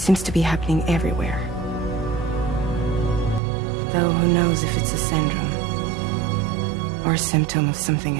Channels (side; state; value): left; drops out; at 3.4 s